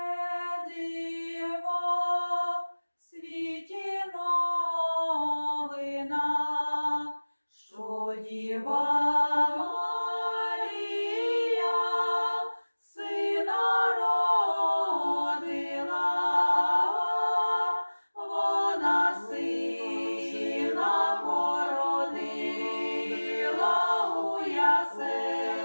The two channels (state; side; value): inverted; both; correlation -1.00